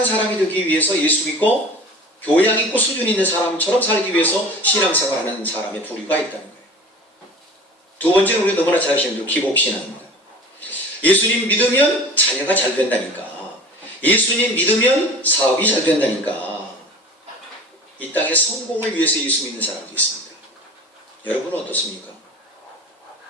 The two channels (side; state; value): both; normal; correlation 0.39